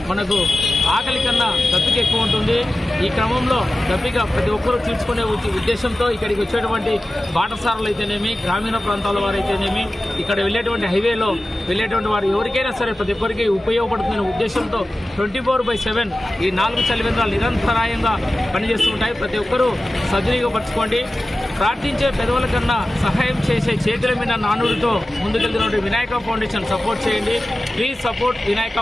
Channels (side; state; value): both; normal; correlation 0.94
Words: మనకు ఆకలి కన్నా దప్పిక ఎక్కువ ఉంటుంది. ఈ క్రమంలో దప్పిక ప్రతి ఒక్కరూ తీర్చుకునే ఉద్దేశంతో ఇక్కడికి వచ్చేటువంటి బాటసారులు అయితేనేమి, గ్రామీణ ప్రాంతాల వారు అయితేనేమి, ఇక్కడ వెళ్ళేటువంటి హైవేలో వెళ్ళేటువంటి వారు ఎవరికైనా సరే ప్రతి ఒక్కరికి ఉపయోగపడుతున్న ఉద్దేశంతో 24/7 ఈ 4 చలివేంద్రాలు నిరంతరాయంగా పనిచేస్తుంటాయి. ప్రతి ఒక్కరూ సద్వినియోగపరచుకోండి. ప్రార్థించే పెదవుల కన్నా సహాయం చేసే చేతుల మీద నానుడితో ముందుకెళ్తున్న వినాయక ఫౌండేషన్ సపోర్ట్ చేయండి. Please support Vinayaka